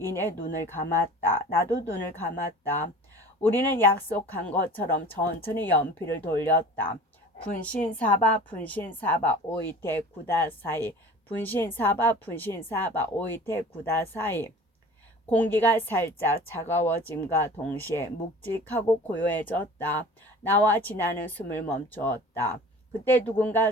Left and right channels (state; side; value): normal; both; correlation 0.42